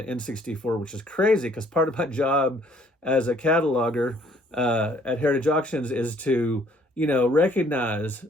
N64, which is crazy because part of my job as a cataloger at Heritage Auctions is to, recognize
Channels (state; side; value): normal; both; correlation 0.61